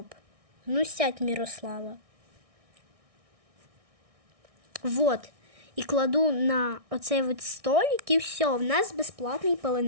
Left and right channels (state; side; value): late; left; 1.6 ms